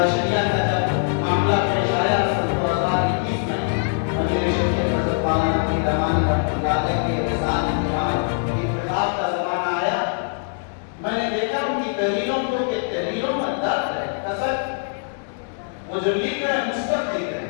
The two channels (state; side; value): silent; right; digital silence